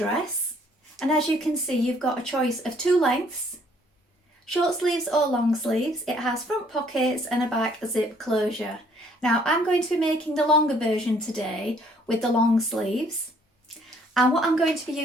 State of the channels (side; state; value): both; normal; correlation 0.63